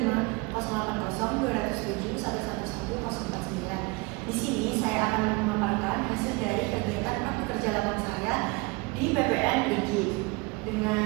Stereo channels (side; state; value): left; quieter; 26.8 dB